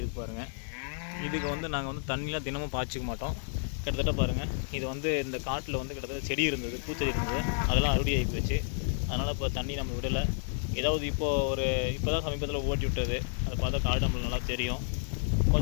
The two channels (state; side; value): silent; right; digital silence